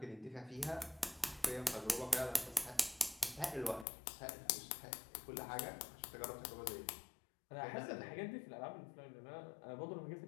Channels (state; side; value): drops out; right; at 3.9 s